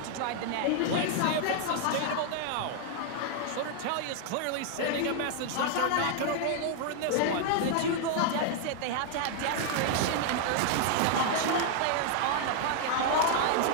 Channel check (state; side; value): different; both; correlation 0.00